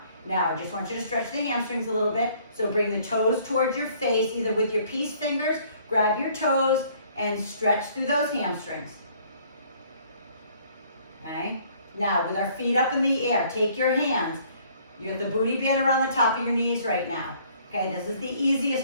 Now, I just want you to stretch the hamstrings a little bit. So bring the toes towards your face, either with your peace fingers, grab your toes, and stretch through those hamstrings. Okay? Now, with our feet up in the air, take your hands. You have the booty band around the top of your knees right now. Okay, this is the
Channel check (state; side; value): inverted; both; correlation -0.60